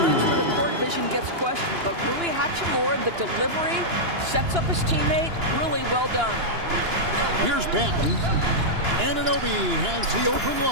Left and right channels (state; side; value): late; left; 2.9 ms